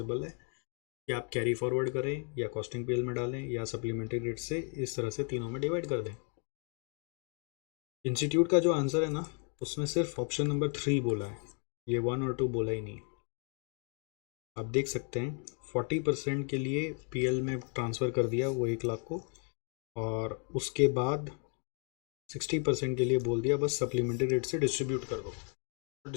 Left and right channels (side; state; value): right; quieter; 39.6 dB